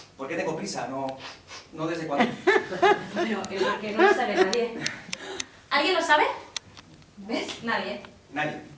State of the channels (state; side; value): identical; both; correlation 1.00